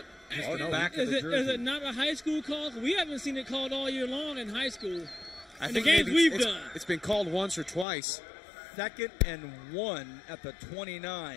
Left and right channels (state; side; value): drops out; right; at 7.9 s